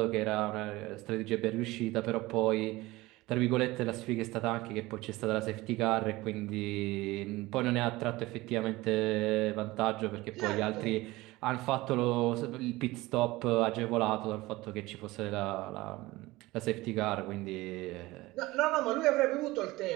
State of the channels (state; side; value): quieter; left; 19.8 dB